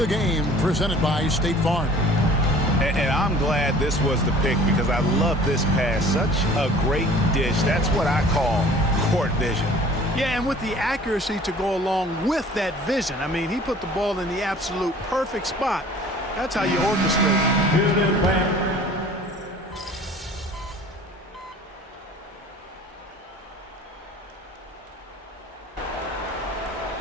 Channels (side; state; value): both; normal; correlation 0.48